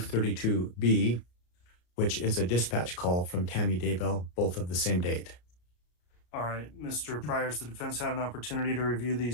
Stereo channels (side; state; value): right; late; 33 ms